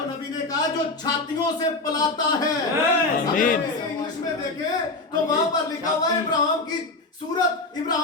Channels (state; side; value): quieter; right; 3.3 dB